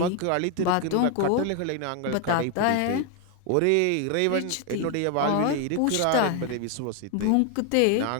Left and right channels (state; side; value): different; both; correlation 0.01